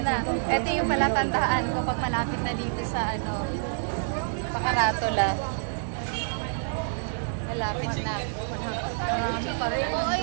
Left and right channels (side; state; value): left; silent; digital silence